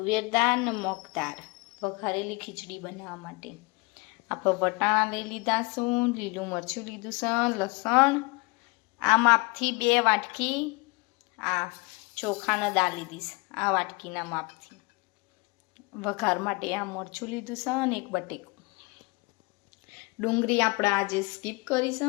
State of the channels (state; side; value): quieter; right; 27.0 dB